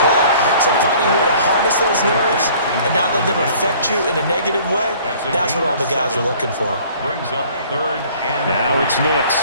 play. So finding a way to harness those nerves and not let them affect you in a negative way, that's what all the guys are looking for. Brings up third and now it's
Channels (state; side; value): inverted; both; correlation -0.53